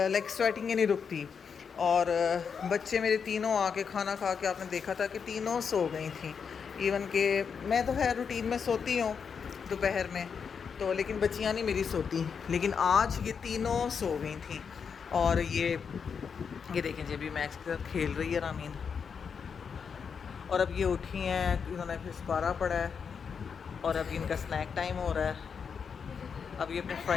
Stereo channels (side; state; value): right; quieter; 6.4 dB